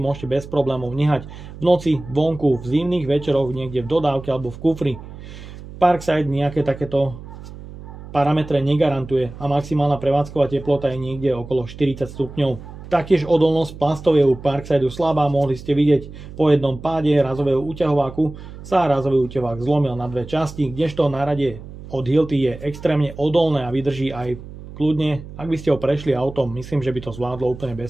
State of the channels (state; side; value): noise; right; hum, 14 dB below the sound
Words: bez problémov nehať v noci, vonku, v zimných večeroch, niekde v dodávke alebo v kufri. Parkside nejaké takéto parametre negarantuje a maximálna prevádzková teplota je niekde okolo 40 stupňov. Taktiež odolnosť plastov je u Parksideu slabá, mohli ste vidieť po jednom páde razového úťahováku sa razový úťahovák zlomil na dve časti, kdežto náradie od Hilti je extrémne odolné a vydrží aj kľudne. Ak by ste ho prešli autom, myslím, že by to zvládlo úplne